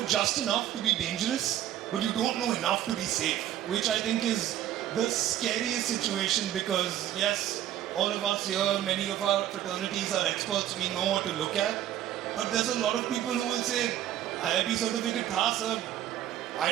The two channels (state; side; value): quieter; left; 11.9 dB